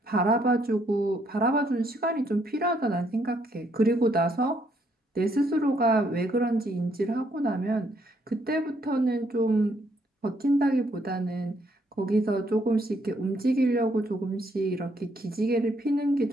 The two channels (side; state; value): both; normal; correlation 0.71